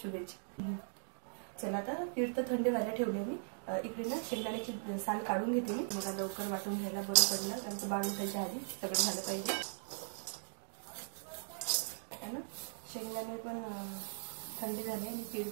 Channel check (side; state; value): left; silent; digital silence